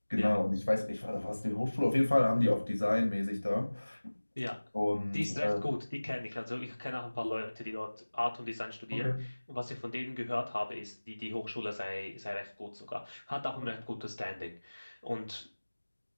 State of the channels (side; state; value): both; inverted; correlation -1.00